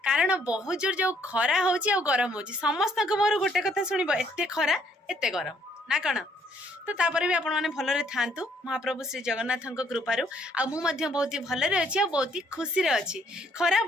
कारण बहुत जोर जो खरा होची आ गरम होची समस्त मोर गोटे कथा शुणब एते खरा एते गरम ना कण तो तापर भी आपण मैंने भलरे थांतु महाप्रभु श्री जगन्नाथ कृपारू आ मु मध्य बहुत ही भलरे अच्छी आ बहुत ही खुशी रे अच्छी खरा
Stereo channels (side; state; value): both; normal; correlation 0.67